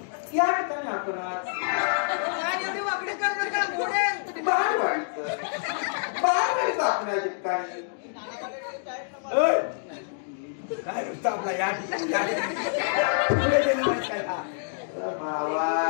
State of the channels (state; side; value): silent; right; digital silence